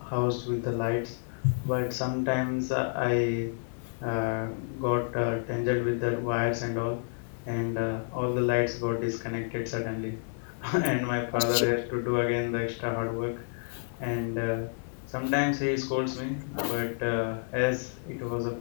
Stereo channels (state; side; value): silent; right; digital silence